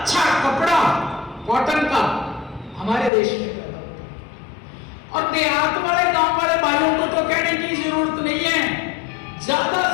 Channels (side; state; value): right; drops out; at 3.1 s